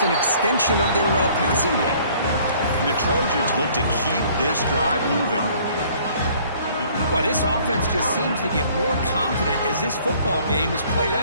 an extension of their passing game. And the Trojans look to keep this drive moving. Well, this offense just seems to get more confident as this football game is played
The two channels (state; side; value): inverted; both; correlation -0.57